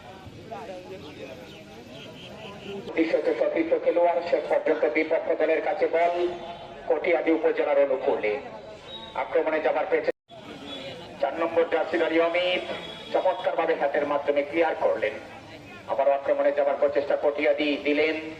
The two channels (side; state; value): both; identical; correlation 1.00